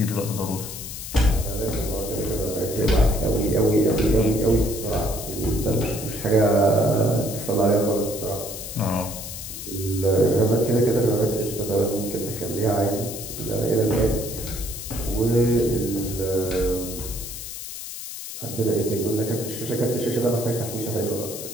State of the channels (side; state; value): left; noise; hiss, 9 dB below the sound